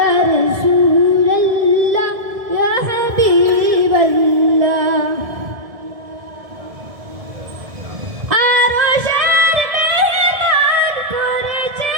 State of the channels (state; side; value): late; left; 1.7 ms